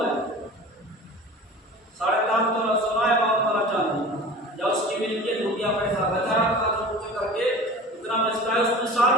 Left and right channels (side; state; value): both; normal; correlation 0.38